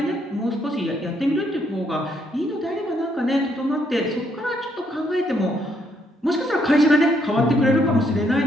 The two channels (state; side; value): normal; both; correlation 0.73